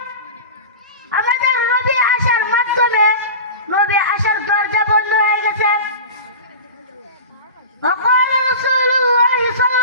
আমাদের নবী আসার মাধ্যমে নবী আসার দরজা বন্ধ হয়ে গেছে। وقال رسول الله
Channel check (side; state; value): both; inverted; correlation -0.32